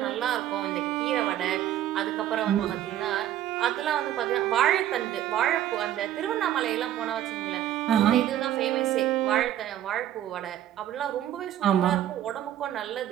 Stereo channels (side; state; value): left; quieter; 11.8 dB